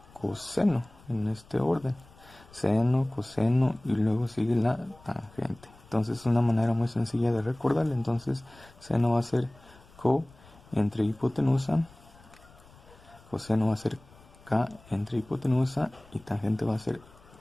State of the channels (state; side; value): noise; left; rumble, 25 dB below the sound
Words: coseno en este orden: seno, coseno, y luego sigue la tangente. Entonces es una manera muy sencilla de recordarle. Entonces seno va a ser co entre hipotenusa, coseno va a ser k entre hipotenusa, y tangente va a ser